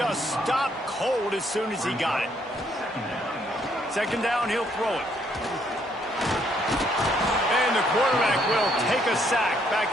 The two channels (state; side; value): normal; both; correlation 0.70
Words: stopped cold as soon as he got it. Second down, he'll throw it. And the quarterback will take a sack